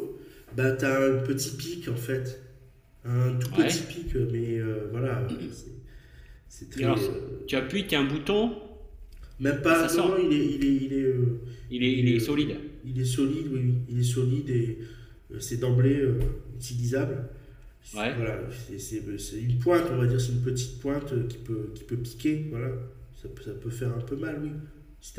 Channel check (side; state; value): both; identical; correlation 1.00